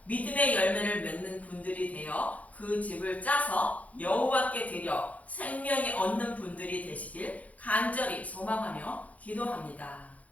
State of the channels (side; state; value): right; late; 0.070 ms